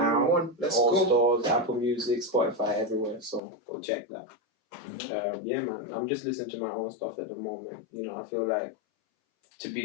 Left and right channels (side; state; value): right; drops out; at 3.4 s